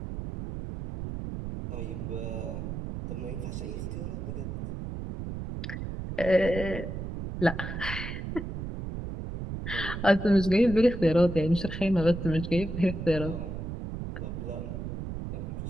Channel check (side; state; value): right; noise; rumble, 6 dB below the sound